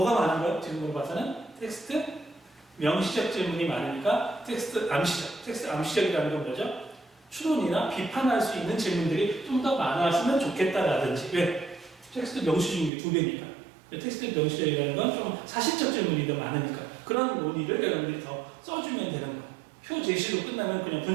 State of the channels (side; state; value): left; drops out; at 12.9 s